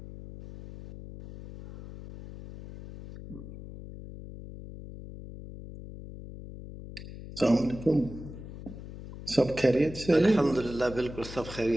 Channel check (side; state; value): left; noise; hum, 13 dB below the sound